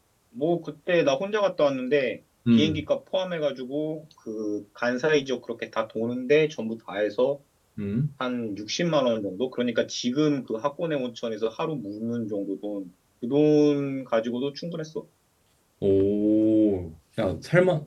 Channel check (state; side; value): identical; both; correlation 1.00